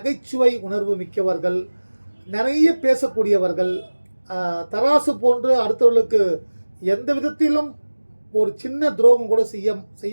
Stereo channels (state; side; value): inverted; both; correlation -1.00